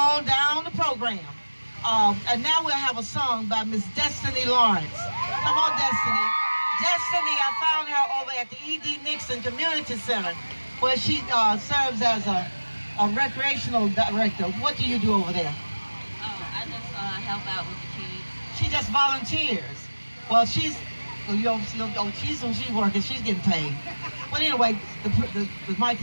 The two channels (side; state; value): both; inverted; correlation -1.00